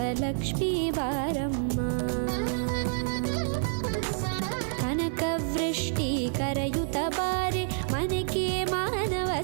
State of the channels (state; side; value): silent; left; 59 dB below the other